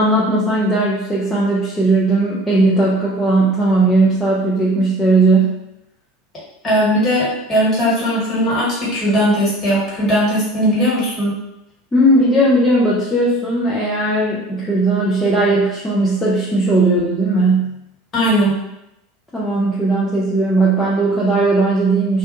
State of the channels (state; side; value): normal; both; correlation 0.49